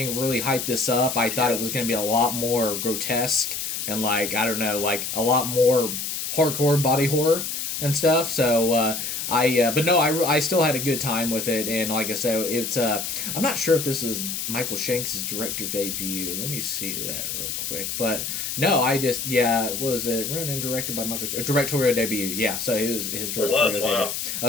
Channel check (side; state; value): left; noise; hiss, 4 dB below the sound